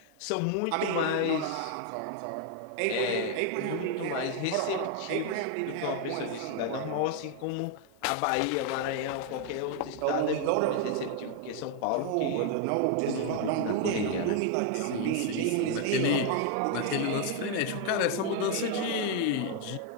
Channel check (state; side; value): different; both; correlation 0.01